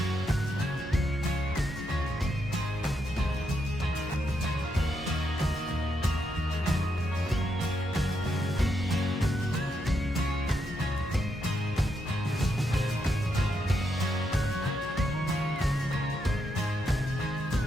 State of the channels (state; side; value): normal; both; correlation 0.80